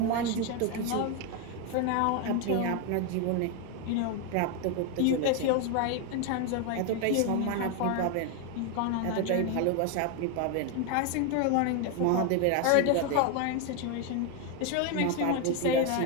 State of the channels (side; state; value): both; different; correlation 0.01